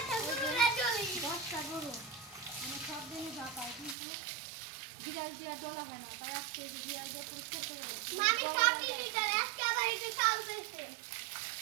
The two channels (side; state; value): left; drops out; at 4.0 s